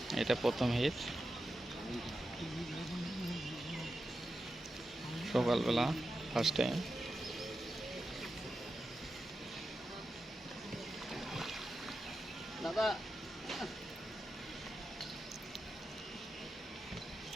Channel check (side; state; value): both; normal; correlation 0.90